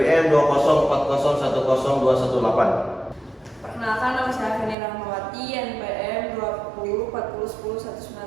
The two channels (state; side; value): drops out; left; at 4.8 s